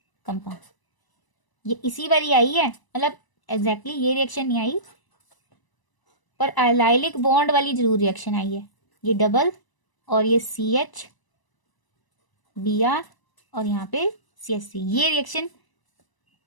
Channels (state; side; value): late; right; 1.0 ms